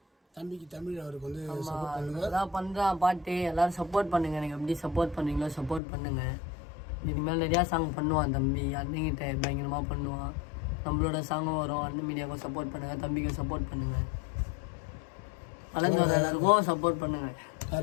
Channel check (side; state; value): right; drops out; at 5.8 s